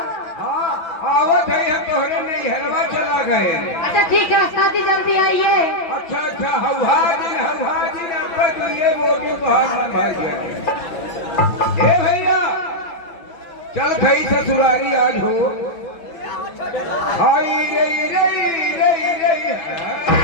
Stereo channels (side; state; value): right; late; 5.8 ms